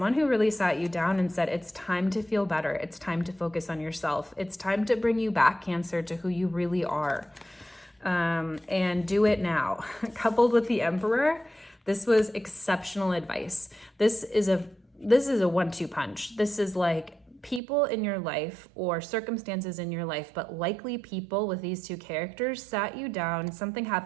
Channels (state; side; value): drops out; left; at 17.6 s